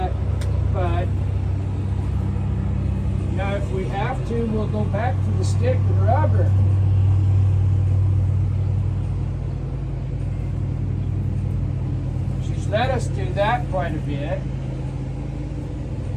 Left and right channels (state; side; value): identical; both; correlation 1.00